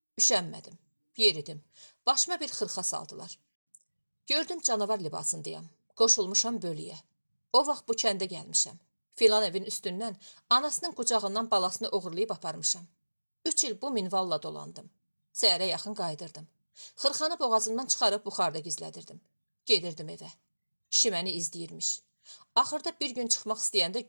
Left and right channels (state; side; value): inverted; both; correlation -1.00